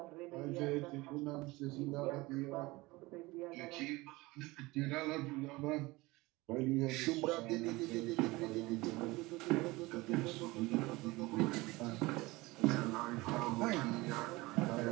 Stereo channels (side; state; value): left; quieter; 21.6 dB